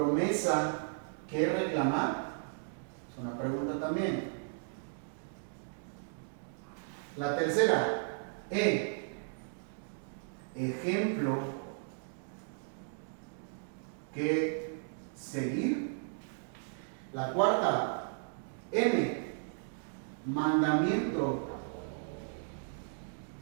que reclamar, es una pregunta también. La tercera, ejemplo que seguir. La cuarta, mandamiento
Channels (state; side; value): silent; left; digital silence